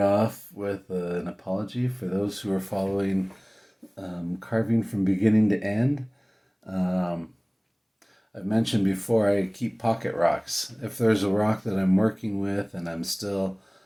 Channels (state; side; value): identical; both; correlation 1.00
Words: with an apology for those who are following carving from beginning to end. Um, I've mentioned before I keep pocket rocks. If there's a rock that I'm working with and